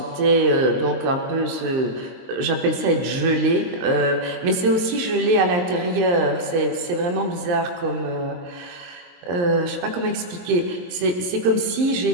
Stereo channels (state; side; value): late; left; 23 ms